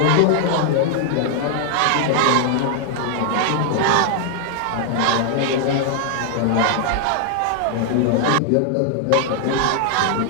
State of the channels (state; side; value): different; both; correlation 0.00